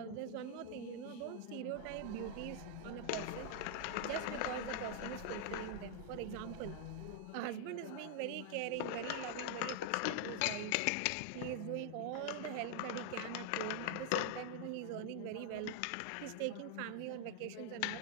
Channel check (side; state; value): both; different; correlation 0.00